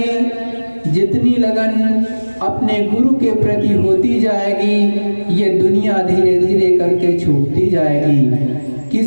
जितनी लगन अपने गुरु के प्रति होती जाएगी, ये दुनिया धीरे धीरे करके छूटती जाएगी।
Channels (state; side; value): inverted; both; correlation -1.00